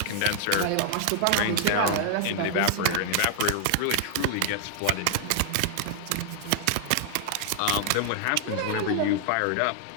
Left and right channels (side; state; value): both; different; correlation -0.01